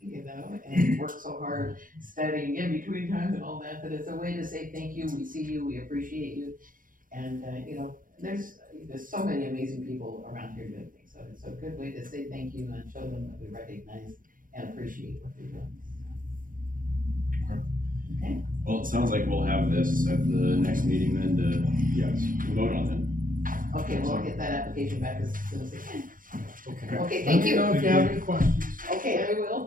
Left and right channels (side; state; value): left; late; 0.40 ms